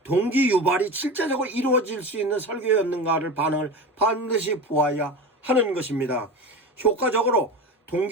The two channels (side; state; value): both; normal; correlation 0.28